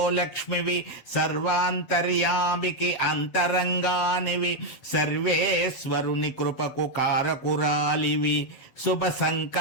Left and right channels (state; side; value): late; right; 7.8 ms